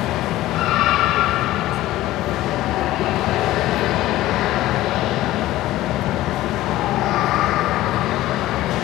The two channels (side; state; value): right; quieter; 15.6 dB